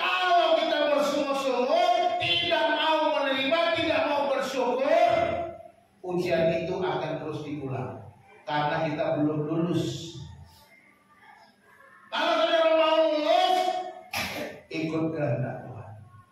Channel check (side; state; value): both; identical; correlation 1.00